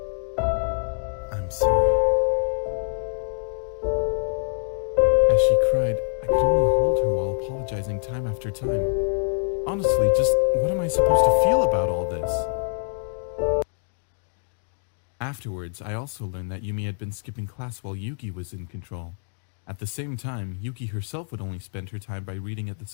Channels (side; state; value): right; silent; digital silence